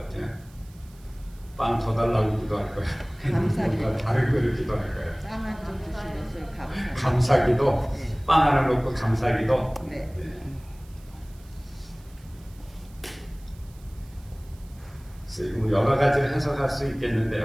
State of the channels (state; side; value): noise; right; hiss, 27 dB below the sound